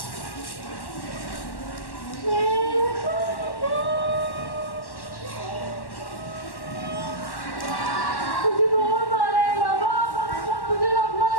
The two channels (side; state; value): right; late; 1.1 ms